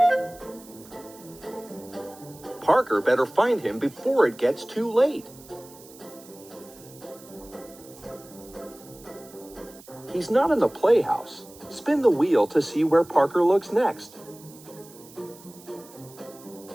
Parker better find him before it gets too late. He's not in the playhouse. Spin the wheel to see where Parker looks next.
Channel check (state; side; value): noise; right; hiss, 21 dB below the sound